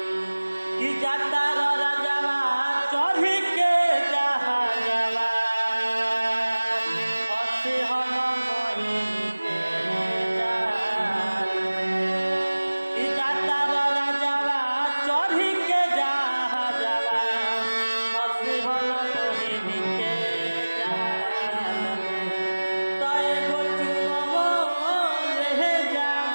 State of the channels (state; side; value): inverted; both; correlation -1.00